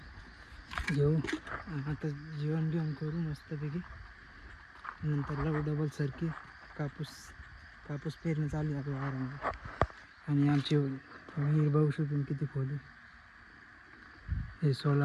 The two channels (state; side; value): identical; both; correlation 1.00